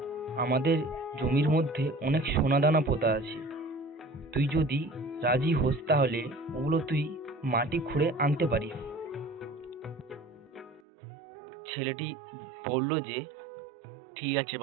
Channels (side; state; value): left; drops out; at 10.8 s